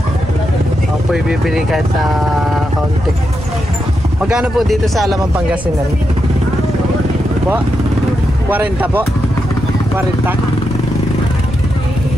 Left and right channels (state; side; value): noise; right; rumble, 13 dB below the sound